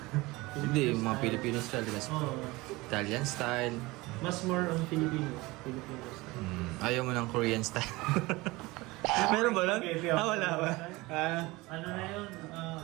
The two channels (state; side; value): quieter; left; 21.8 dB